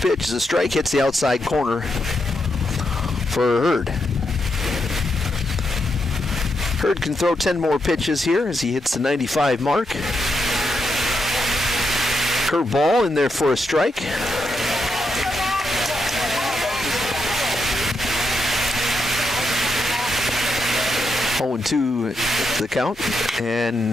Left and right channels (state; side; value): normal; both; correlation 0.82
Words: pitch is a strike, hits the outside corner for Hurd. Hurd can throw 10 more pitches here as he hits the 95 mark. Curveball in there for a strike. Oh, and 2 the count.